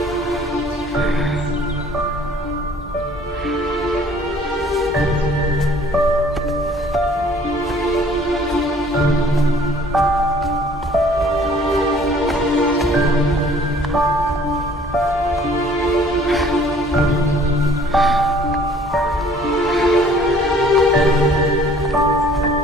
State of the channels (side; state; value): both; normal; correlation 0.55